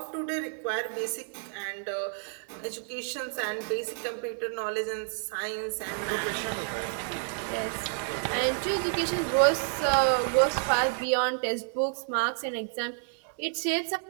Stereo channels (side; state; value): left; silent; 55 dB below the other